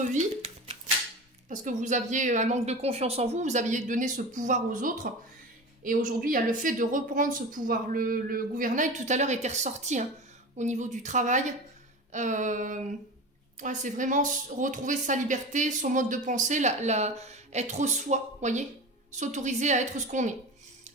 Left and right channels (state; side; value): normal; both; correlation 0.30